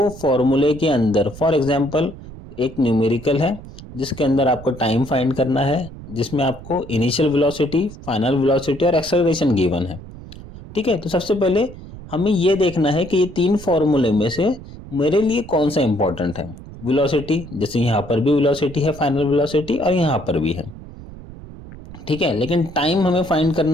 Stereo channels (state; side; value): noise; right; rumble, 15 dB below the sound